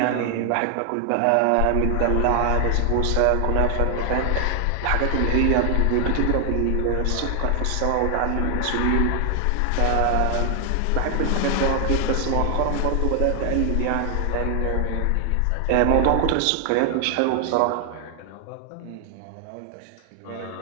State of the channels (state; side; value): different; both; correlation 0.00